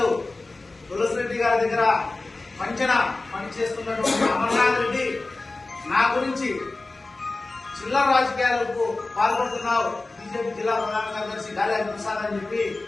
తులసిరెడ్డి గారి దగ్గర పంచన పనిచేస్తున్నటువంటి అమర్నాథ్ రెడ్డి నా గురించి చిల్లర రాజకీయాలకు పాల్పడుతున్నావు, బీజేపీ జిల్లా ప్రధాన కార్యదర్శి గాలి ప్రసాద్ అని చెప్పి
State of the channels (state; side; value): quieter; right; 3.3 dB